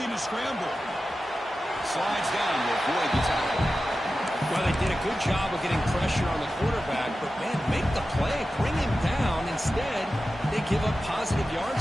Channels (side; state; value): both; normal; correlation 0.93